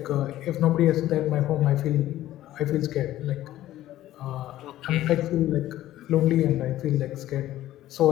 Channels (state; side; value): quieter; right; 14.2 dB